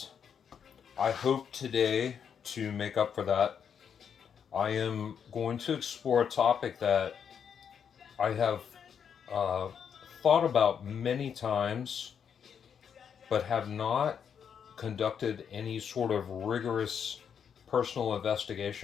I hope today to make up for that. I am going to explore a topic that I have uh, thought about many times, but have not conducted any sort of rigorous personal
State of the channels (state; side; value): quieter; right; 7.5 dB